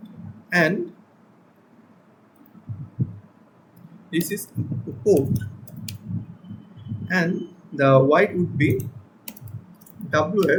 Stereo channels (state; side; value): identical; both; correlation 1.00